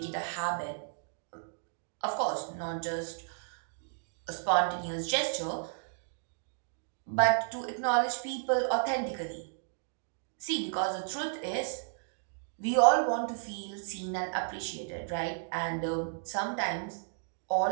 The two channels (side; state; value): left; silent; digital silence